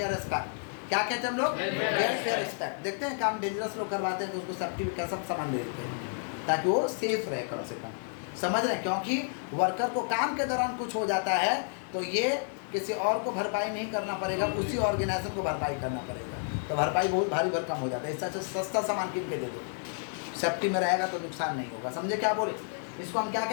एस्पेक्ट। क्या कहते हैं हम लोग? Welfare aspect. देखते हैं काम डेंजरस लोग करवाते हैं तो उसको सेफ्टी का सब सामान दे देते हैं ताकि वो सेफ रहे कम से कम। समझ रहे? क्योंकि वर्कर को काम के दौरान कुछ हो जाता है तो ये किसी और को भरपाई नहीं करना पड़ेगा, उसी ऑर्गेनाइजर को भरपाई करना पड़ेगा, तो भरपाई बहुत भारी भरकम हो जाता है। इससे अच्छा सस्ता सामान किन के दे दो, सेफ्टी में रहेगा तो नुकसान नहीं होगा। समझे क्या बोले? इसको हम क्या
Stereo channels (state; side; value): silent; right; 57 dB below the other